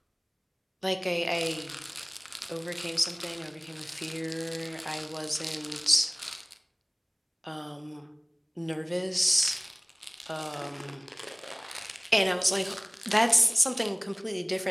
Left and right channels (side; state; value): both; identical; correlation 1.00